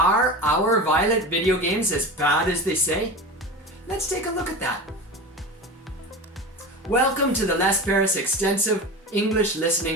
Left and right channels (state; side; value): normal; both; correlation 0.29